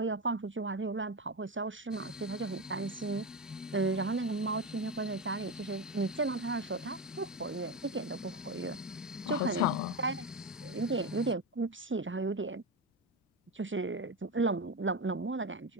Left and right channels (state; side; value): normal; both; correlation 0.17